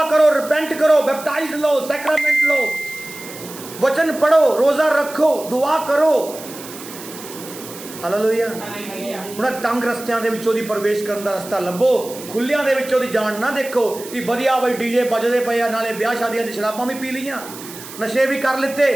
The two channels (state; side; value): noise; right; hiss, 14 dB below the sound